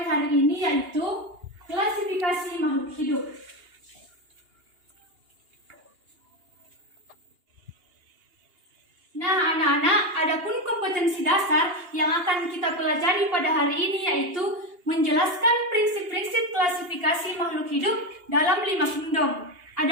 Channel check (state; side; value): late; left; 2.8 ms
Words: hari ini yaitu klasifikasi makhluk hidup. Nah, anak-anak, adapun kompetensi dasar yang akan kita pelajari pada hari ini yaitu menjelaskan prinsip-prinsip klasifikasi makhluk hidup dalam 5 kingdom.